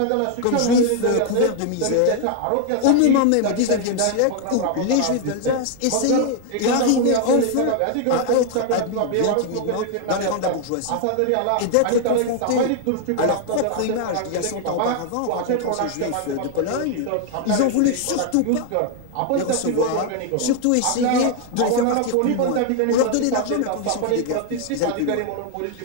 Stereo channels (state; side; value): different; both; correlation 0.00